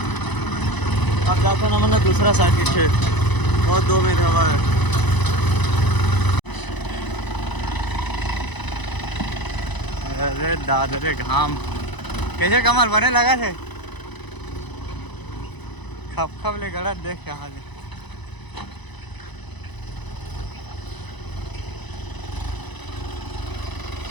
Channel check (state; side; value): late; right; 1.0 ms